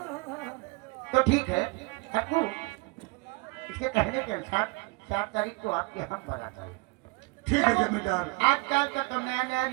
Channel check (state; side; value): quieter; left; 27.8 dB